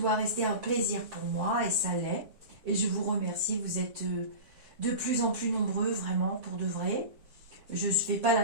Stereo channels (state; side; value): late; left; 7.6 ms